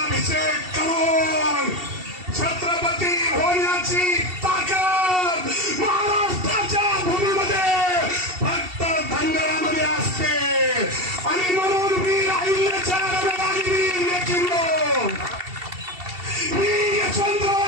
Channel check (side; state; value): left; late; 2.7 ms